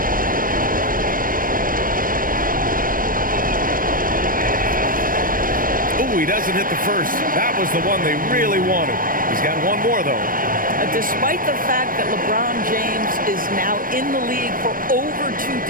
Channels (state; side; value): late; left; 0.41 ms